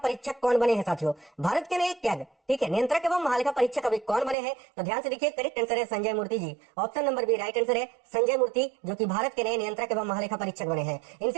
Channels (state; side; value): drops out; left; at 4.4 s